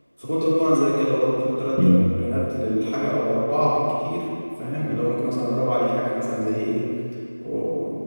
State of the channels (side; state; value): both; inverted; correlation -1.00